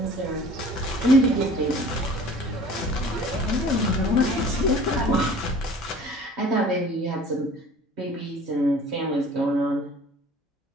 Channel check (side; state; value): both; normal; correlation 0.47